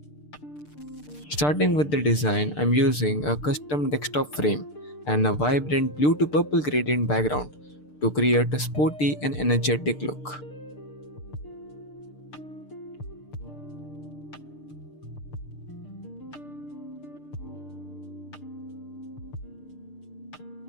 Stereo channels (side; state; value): right; late; 6.7 ms